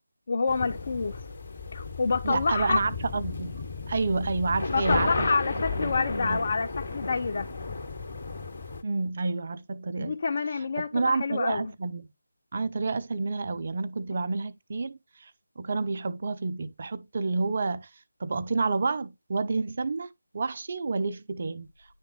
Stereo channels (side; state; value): both; inverted; correlation -0.88